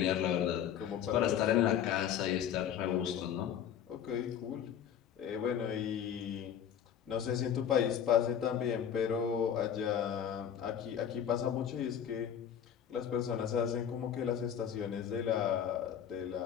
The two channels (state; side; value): quieter; right; 9.1 dB